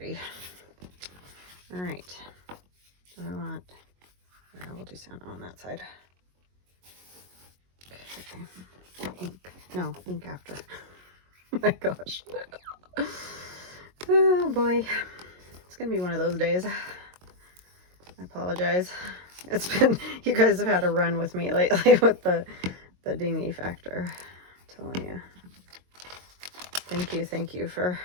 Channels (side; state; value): left; late; 22 ms